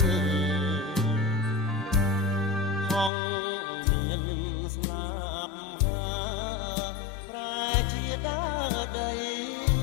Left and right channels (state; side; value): drops out; right; at 3.1 s